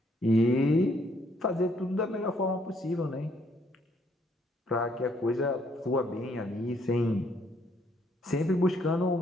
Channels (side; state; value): both; normal; correlation 0.69